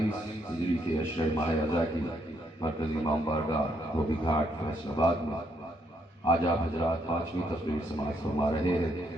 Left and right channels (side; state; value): both; normal; correlation 0.74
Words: ہجری کے اشرِ ماہ رضا کی مرکزی امام بارگاہ دھوبی گھاٹ فیصل آباد میں آج آپ حضرات 5ویں تقریر سماعت فرما رہے ہیں.